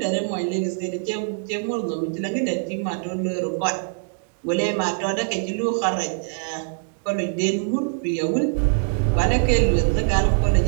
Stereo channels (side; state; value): left; silent; digital silence